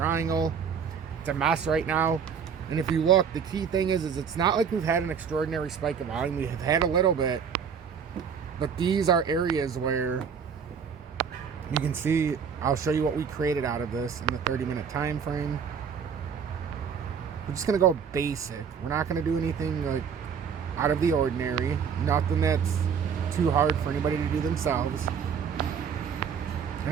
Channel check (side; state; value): left; quieter; 6.9 dB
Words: It's a mess right now. And if you look, the key thing is it's not like we've had an extraordinary spike of volume. We have had a little bit, but these are areas where you can see. I'll show you what we created out of this in the 30-minute time frame. We're just gonna go basic. We're not gonna do anything like out of the ordinary. Nothing that's too hard for anybody to do themselves.